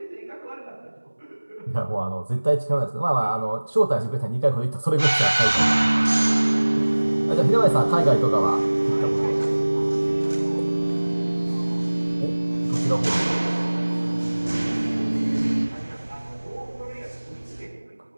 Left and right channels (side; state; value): both; inverted; correlation -1.00